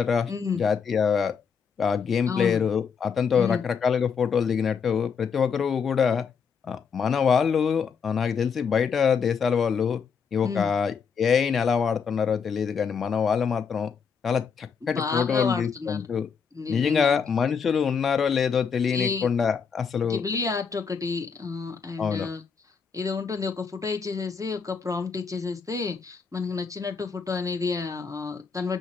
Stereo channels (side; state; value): right; quieter; 6.2 dB